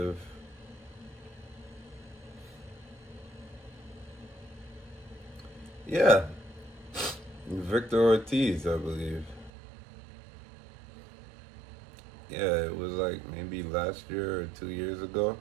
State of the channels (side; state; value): left; drops out; at 9.5 s